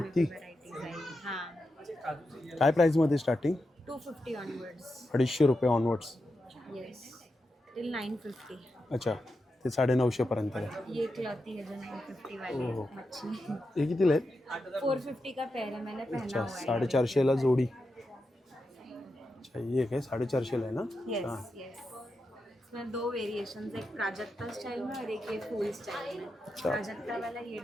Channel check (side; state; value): both; normal; correlation 0.88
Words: काय प्राईसमध्ये स्टार्टिंग? 250 ऑनवर्ड्स. 250 रुपये ऑनवर्ड्स. Yes till 950. अच्छा ते 950 पर्यंत आहे. ये क्लॉथी है जो 950 वाली ओहो. मच्छी. हे कितीला आहेत? 450 का पेयर है, मैंने पहना अच्छा हुआ है. 450ला जोडी. अच्छा ये काय 450ला आहे ना? यस हां. यस. इसमें दो वेरिएशंस, एक प्राजक्ता स्टाइल में और एक ये फुल स्टाइल में. अच्छा. प्राजक्ता वाला ये